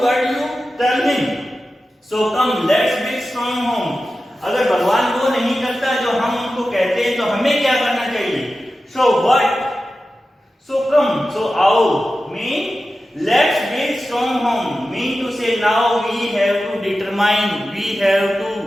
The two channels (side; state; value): both; normal; correlation 0.93